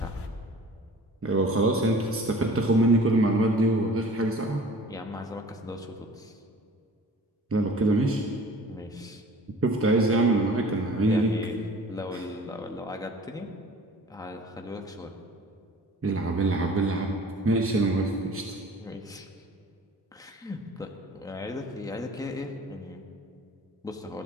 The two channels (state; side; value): normal; both; correlation 0.46